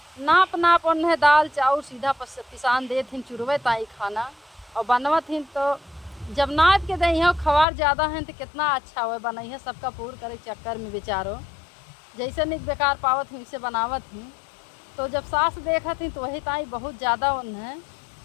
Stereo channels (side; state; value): right; drops out; at 7.7 s